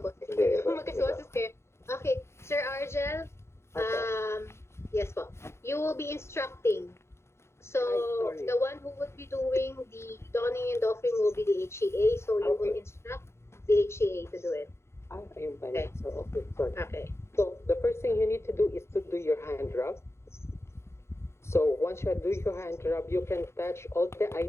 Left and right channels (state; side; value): late; right; 0.13 ms